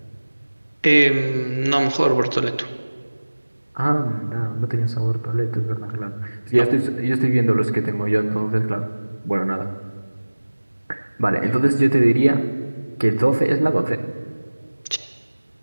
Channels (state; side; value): inverted; both; correlation -1.00